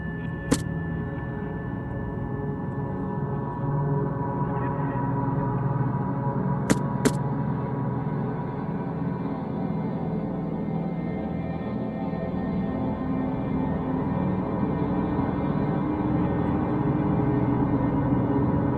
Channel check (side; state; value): both; identical; correlation 1.00